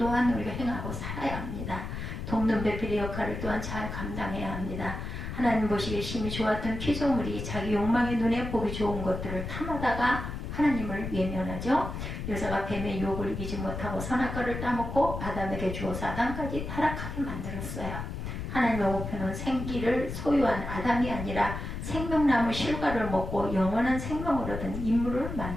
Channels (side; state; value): left; noise; rumble, 6 dB below the sound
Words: 우리가 행하고 살아야 합니다. 돕는 배필의 역할을 또한 잘 감당해야 합니다. 하나님 보시기에 심히 좋았던 피조물이 자기 욕망의 눈에 보기 좋은 것들을 탐하다가 하나님을 외면하죠. 여자가 뱀의 유혹을 이기지 못하고 선악과를 따먹고 아담에게 주어서 아담까지 타락하게 만들었어요. 하나님의 목표는 생기를 소유한 아담이 아니라 생명나무 실과를 먹고 영원한 생명을 얻은 인물을